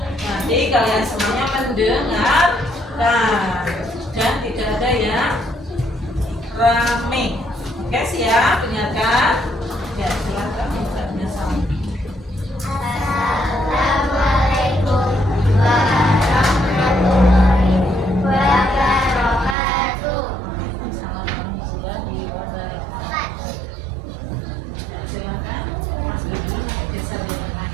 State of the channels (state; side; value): drops out; left; at 19.6 s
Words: Nanti kalian semuanya mendengarkan dan tidak ada yang rame. Oke siap, dengarkan. Ya silakan minta sama. Assalamualaikum warahmatullahi wabarakatuh. Silakan Mas Dulu bisa dilakukan.